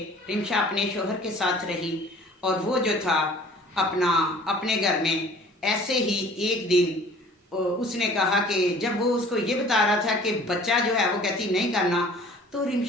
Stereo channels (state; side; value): normal; both; correlation 0.49